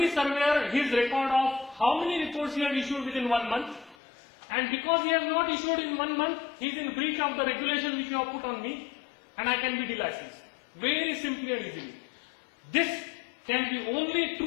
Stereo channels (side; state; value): right; drops out; at 4.0 s